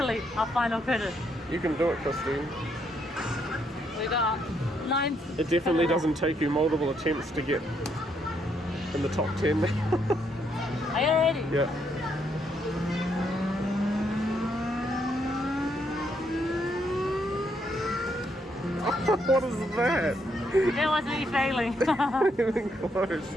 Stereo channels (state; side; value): normal; both; correlation 0.74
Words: our final credit. You can do it, Christine. We got 9. It definitely doesn't take you multiple attempts to get in the top 10 now. Are you ready? Yeah. What is that? It was me failing. Even close.